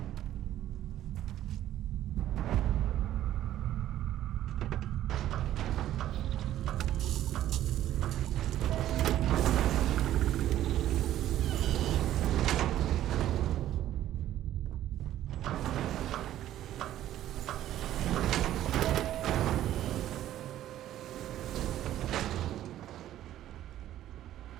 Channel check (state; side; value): quieter; left; 12.7 dB